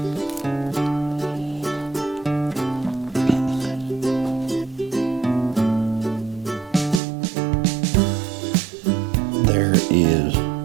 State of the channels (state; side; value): drops out; left; at 7.0 s